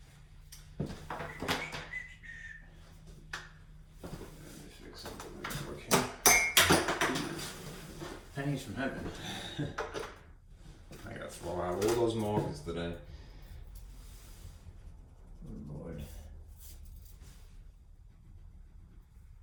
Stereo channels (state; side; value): identical; both; correlation 1.00